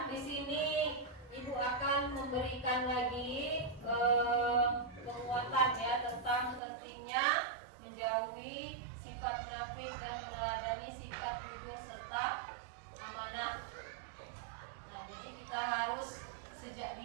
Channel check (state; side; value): drops out; left; at 6.6 s